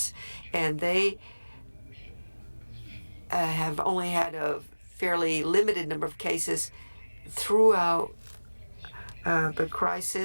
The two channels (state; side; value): inverted; both; correlation -1.00